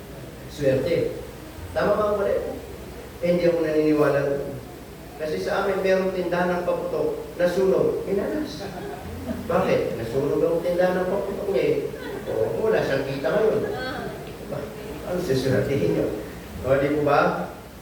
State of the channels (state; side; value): identical; both; correlation 1.00